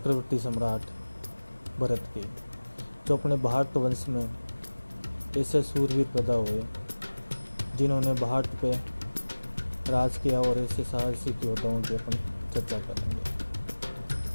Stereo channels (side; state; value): both; inverted; correlation -1.00